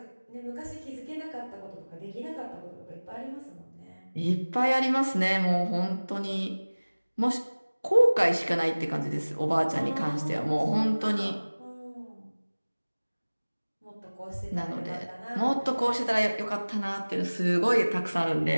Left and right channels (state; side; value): inverted; both; correlation -1.00